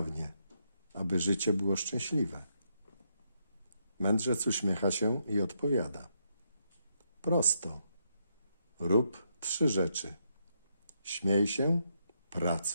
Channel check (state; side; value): inverted; both; correlation -0.79